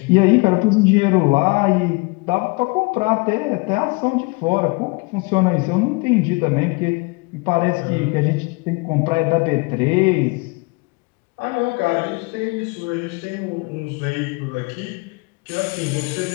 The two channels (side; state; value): right; quieter; 28.1 dB